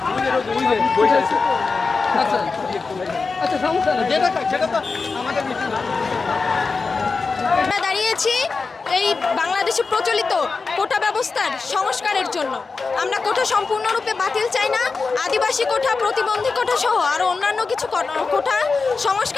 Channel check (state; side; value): quieter; right; 4.4 dB